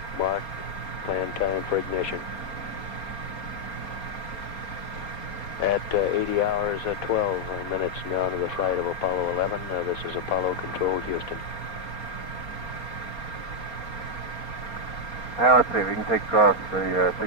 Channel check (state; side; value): late; right; 4.3 ms